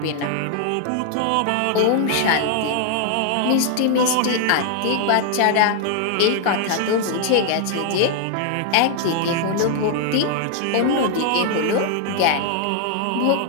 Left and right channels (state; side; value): different; both; correlation 0.00